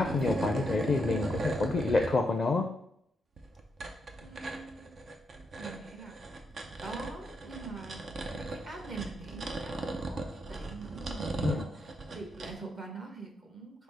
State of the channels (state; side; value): normal; both; correlation 0.80